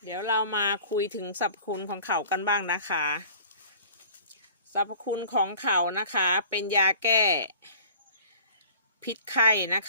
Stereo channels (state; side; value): inverted; both; correlation -0.46